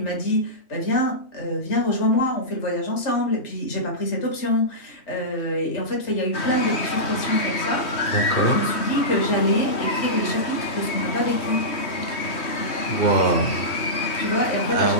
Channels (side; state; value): right; late; 3.2 ms